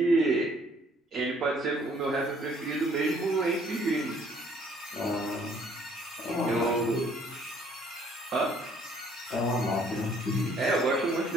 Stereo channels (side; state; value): both; normal; correlation 0.62